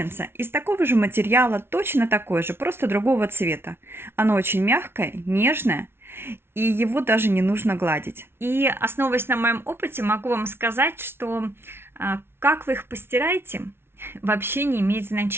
из такого же материала, точно такое же, просто другого цвета. Оно очень мягкое, нежное, и его даже не нужно гладить. И основываясь на моем опыте, могу вам сказать, что как вы их постираете, вообще не имеет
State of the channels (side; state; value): left; late; 0.12 ms